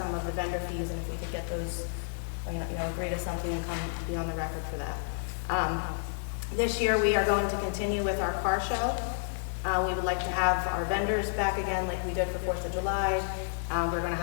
of the vendor fees and if we could get those, agree to something and come be on the record for that. This year, we are going to continue with our car show. We would like to have our vendors back again like we did for 4th of July. We're going to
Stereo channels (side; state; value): right; silent; digital silence